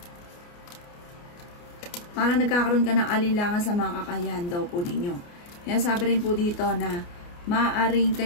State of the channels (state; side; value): late; right; 29 ms